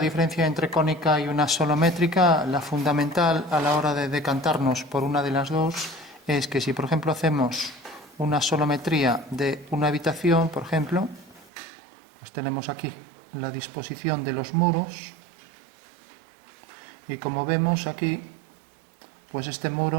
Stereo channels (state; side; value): drops out; left; at 11.5 s